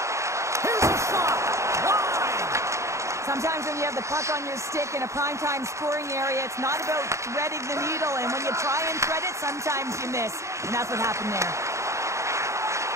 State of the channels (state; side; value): late; left; 0.14 ms